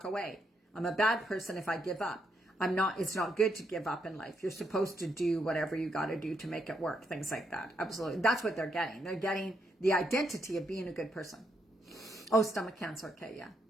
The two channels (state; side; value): normal; both; correlation 0.78